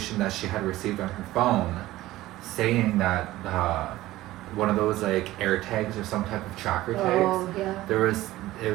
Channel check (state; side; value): quieter; left; 16.5 dB